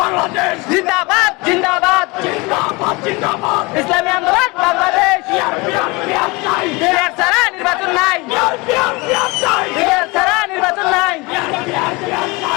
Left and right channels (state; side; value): quieter; right; 24.9 dB